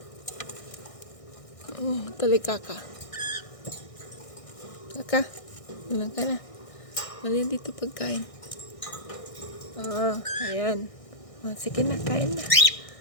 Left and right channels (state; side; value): late; right; 1.6 ms